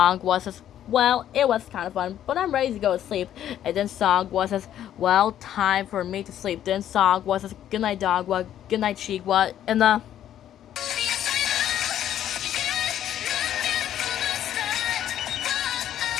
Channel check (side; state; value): right; quieter; 11.0 dB